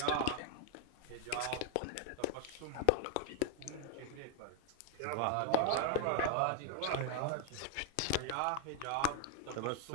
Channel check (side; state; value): both; different; correlation 0.00